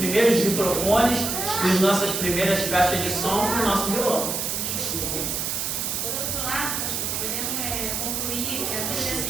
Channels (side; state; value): right; noise; hiss, 1 dB below the sound